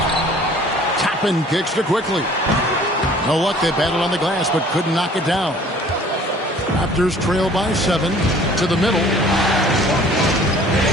Toppin kicks to Quickly. No luck, they battled on the glass, but couldn't knock it down. Raptors trail by 7 to the middle.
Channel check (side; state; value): both; normal; correlation 0.52